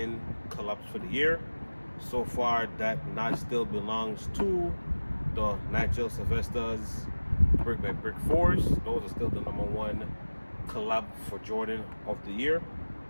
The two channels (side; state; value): both; inverted; correlation -1.00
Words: collabs for the year. So far, that notch still belongs to the Nigel Sylvester's Brick by Brick 4s. Those are still the number 1 collab for Jordan of the year.